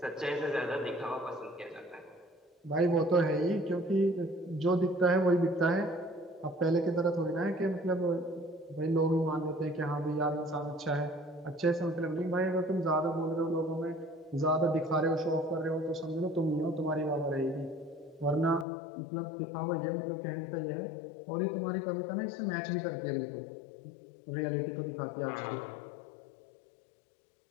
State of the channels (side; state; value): right; drops out; at 18.7 s